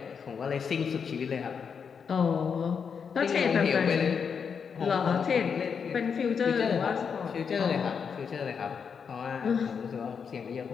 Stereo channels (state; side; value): quieter; right; 6.4 dB